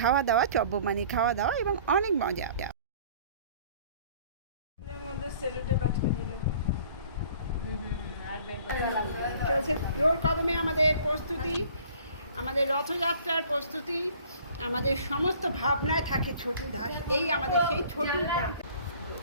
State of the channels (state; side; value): inverted; both; correlation -0.52